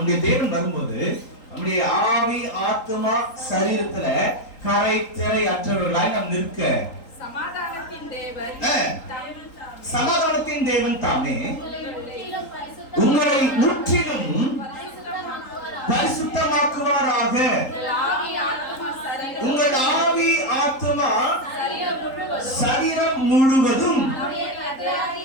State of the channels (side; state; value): right; late; 3.8 ms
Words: தேவன் வரும்போது நம்முடைய ஆவி, ஆத்மா, சரீரத்துல கரை திரை அற்றவர்களாய் நாம் நிற்க சமாதானத்தின் தேவன் தாமே உங்களை முற்றிலும் பரிசுத்தமாக்குவாராக. உங்கள் ஆவி, ஆத்மா, சரீரம் முழுவதும் நம்முடைய